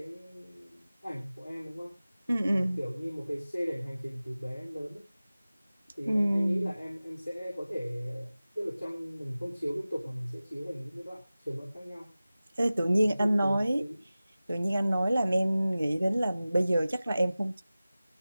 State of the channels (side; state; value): both; inverted; correlation -0.97